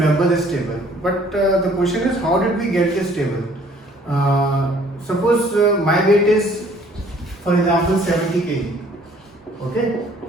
this table. But the question is, how did we get this table? Suppose my weight is, for example, 70 kg. Okay,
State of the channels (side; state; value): both; normal; correlation 0.58